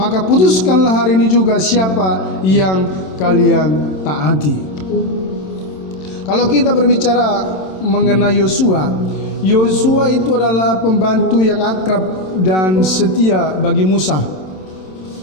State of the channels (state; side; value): late; right; 27 ms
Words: putuskanlah hari ini juga siapa yang kalian taati. Kalau kita berbicara mengenai Yosua, Yosua itu adalah pembantu yang akrab dan setia bagi Musa.